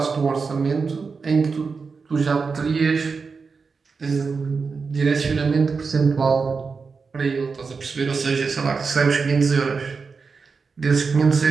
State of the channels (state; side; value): quieter; left; 4.9 dB